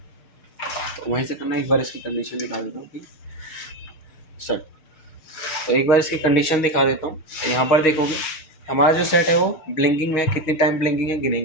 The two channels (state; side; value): late; right; 6.4 ms